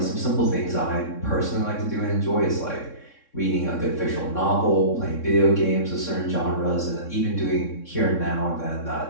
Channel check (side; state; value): right; late; 3.6 ms